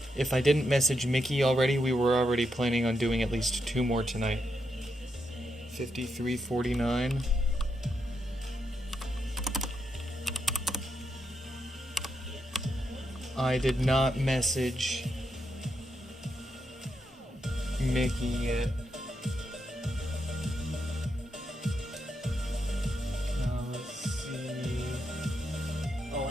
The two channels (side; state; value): both; normal; correlation 0.82